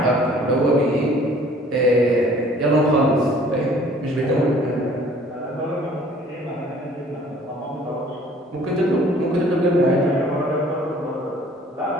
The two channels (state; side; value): normal; both; correlation 0.54